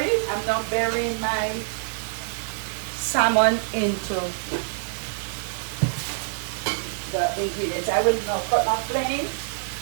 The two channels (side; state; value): left; silent; digital silence